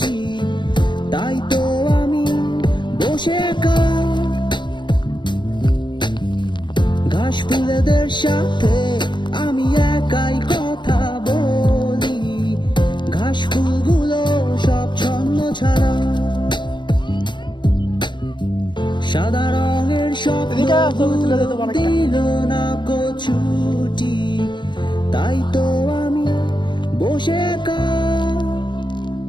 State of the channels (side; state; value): right; late; 0.22 ms